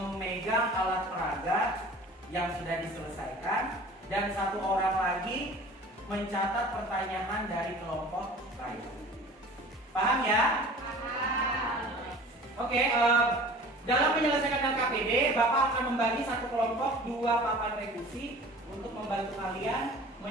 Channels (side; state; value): both; normal; correlation 0.43